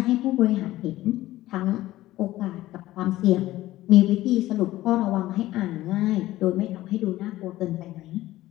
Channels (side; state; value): right; quieter; 16.0 dB